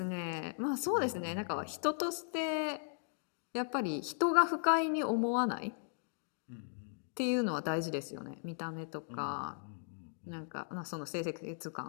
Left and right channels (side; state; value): right; silent; digital silence